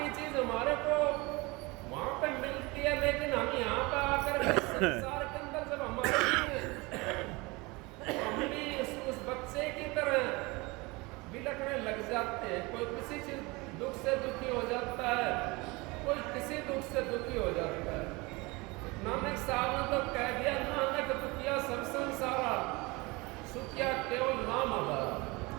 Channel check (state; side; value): quieter; left; 24.7 dB